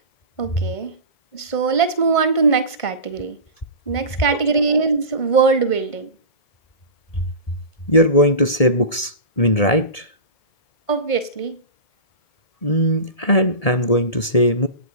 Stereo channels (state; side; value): late; right; 1.7 ms